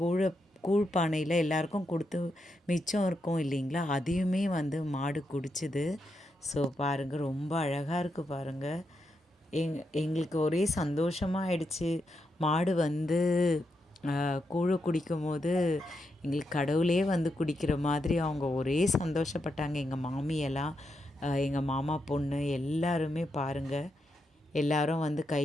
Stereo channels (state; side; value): normal; both; correlation 0.84